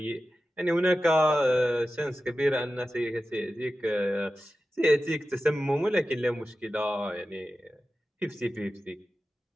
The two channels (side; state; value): both; normal; correlation 0.93